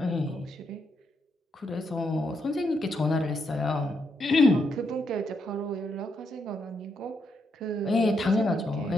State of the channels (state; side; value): normal; both; correlation 0.80